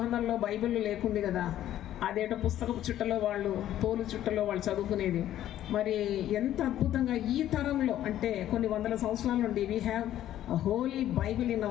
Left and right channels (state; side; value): quieter; right; 12.3 dB